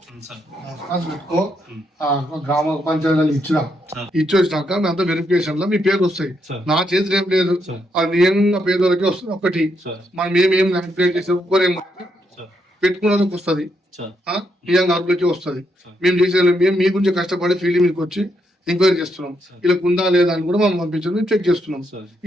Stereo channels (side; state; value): both; normal; correlation 0.78